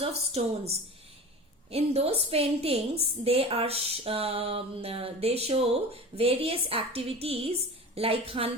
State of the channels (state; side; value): normal; both; correlation 0.34